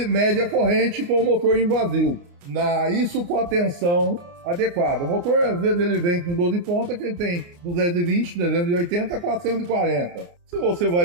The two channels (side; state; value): left; late; 29 ms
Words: a corrente com o motor em vazio. Isso com a tensão adequada. O motor, às vezes, ele vem com 12 pontas, que ele tem 220, 380, 440. Se você